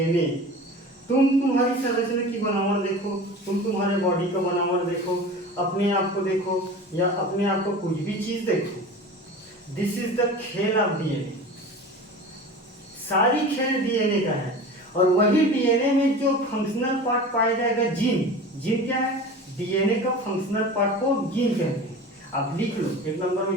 तुम तुम्हारी संरचना की बनावट देखो, तुम तुम्हारे बॉडी का बनावट देखो, अपने आप को देखो या अपने आप को कुछ भी चीज देखो, दिस इज द खेल ऑफ डीएनए। सारी खेल डीएनए का है। और वही डीएनए में जो फंक्शनल पार्ट पाया जाएगा, जीन क्या है, डीएनए का फंक्शनल पार्ट को जीन कहते हैं। आप लिख लो, 1 नंबर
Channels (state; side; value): normal; both; correlation 0.35